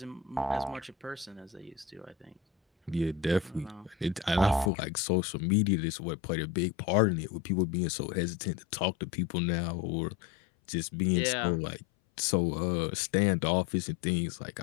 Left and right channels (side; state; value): right; drops out; at 4.7 s